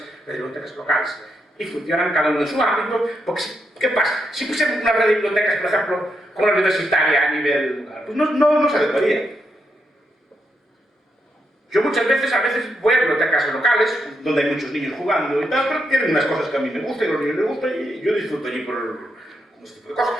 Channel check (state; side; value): normal; both; correlation 0.81